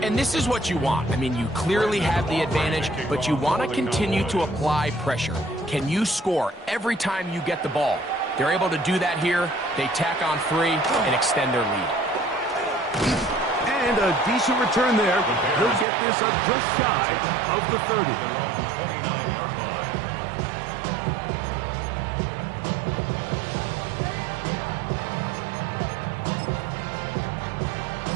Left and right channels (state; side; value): drops out; left; at 15.9 s